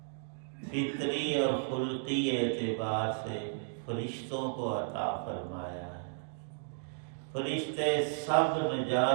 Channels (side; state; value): left; silent; digital silence